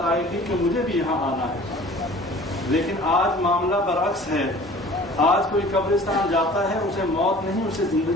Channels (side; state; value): both; normal; correlation 0.47